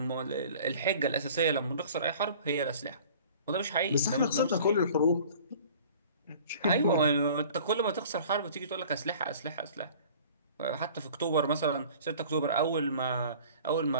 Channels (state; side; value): inverted; both; correlation -0.47